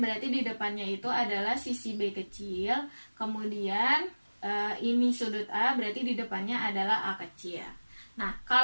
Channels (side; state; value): both; inverted; correlation -1.00